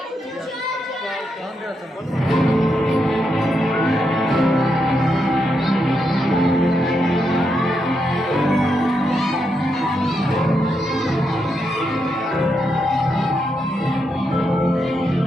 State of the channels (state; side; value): normal; both; correlation 0.82